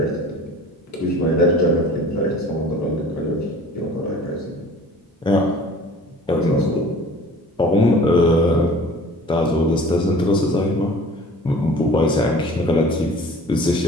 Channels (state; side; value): normal; both; correlation 0.45